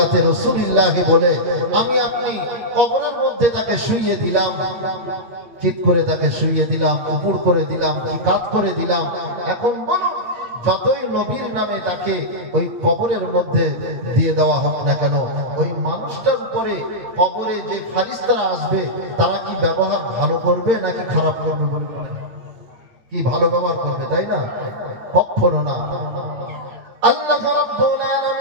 রাসূলিল্লাহ বলে আমি আপনি কবরের মধ্যে তাকে শুইয়ে দিলাম, চিৎ করে তাকে শুইয়ে দিলাম, উপর করে দিলাম, কি কাট করে দিলাম। এখন বলো, যতই নবীর নামে তাকে ওই কবরের মধ্যে দিয়ে দেওয়া হোক না কেন, ওই মানুষটার উপরে কবরে যে ফারিস্তারা আসবে তারা কি ব্যবহার ভালো করবে নাকি খারাপ করবে? বলে কি ভালো ব্যবহার করবে, তাই না? কখনো না। আল্লাহ রাব্বুল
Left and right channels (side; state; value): left; late; 9.1 ms